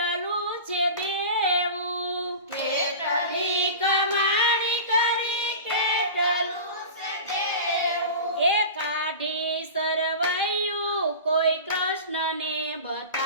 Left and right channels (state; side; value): inverted; both; correlation -0.32